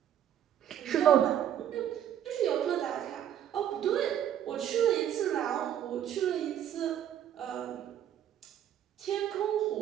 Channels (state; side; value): quieter; left; 10.3 dB